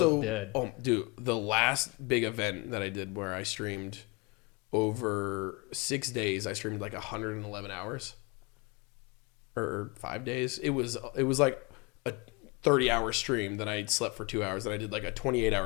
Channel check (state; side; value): quieter; right; 28.1 dB